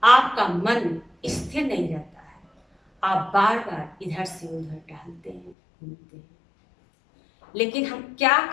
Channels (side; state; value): right; drops out; at 5.6 s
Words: आपका मन स्थिर नहीं रहता है, आप बार बार इधर से उधर टहलते हैं, घूमते हैं। लेकिन हम क्या